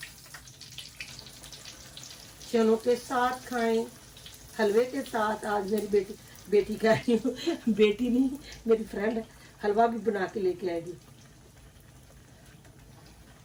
चनों के साथ खाएं, हलवे के साथ। आज मेरी बेटी कह रही हूँ, बेटी नहीं मेरी फ्रेंड, हलवा भी बना के लेके आएगी।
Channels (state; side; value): identical; both; correlation 1.00